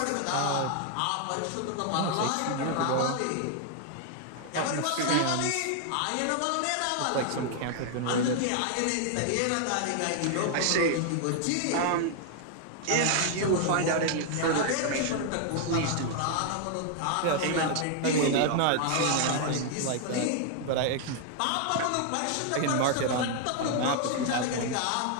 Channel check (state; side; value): different; both; correlation 0.00